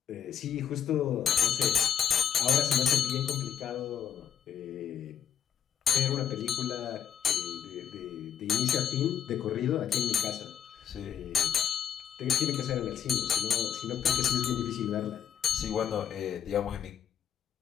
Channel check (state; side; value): quieter; right; 8.7 dB